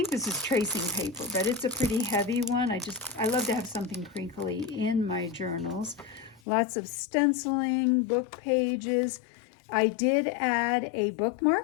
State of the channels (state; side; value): drops out; right; at 6.4 s